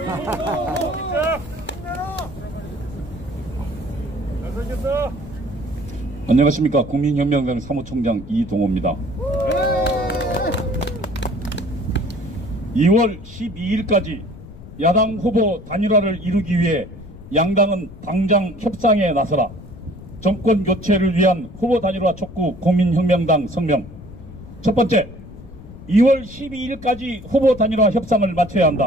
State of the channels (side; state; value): left; noise; rumble, 16 dB below the sound